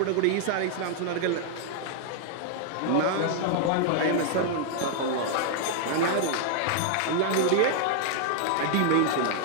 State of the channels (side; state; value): both; different; correlation 0.00